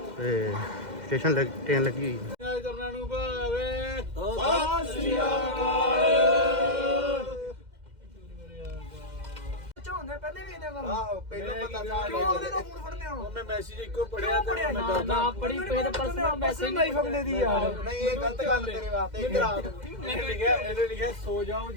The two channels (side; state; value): left; late; 2.1 ms